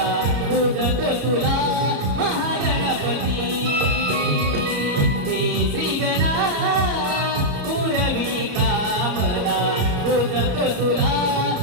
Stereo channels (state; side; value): late; left; 34 ms